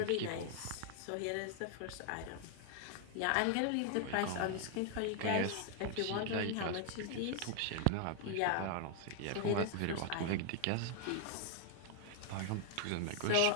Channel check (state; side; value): different; both; correlation 0.00